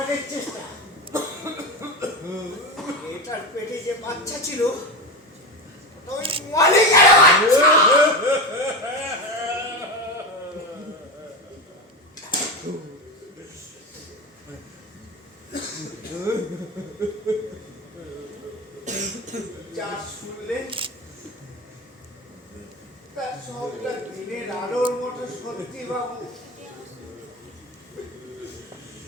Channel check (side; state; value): both; normal; correlation 0.20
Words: চেষ্টা। এটার পেটে যে বাচ্চা ছিল ওটা ওই মালিকের বাচ্চা। যা শুনলে তার সবটা দিনের আলোর মতো সত্যি বাবু।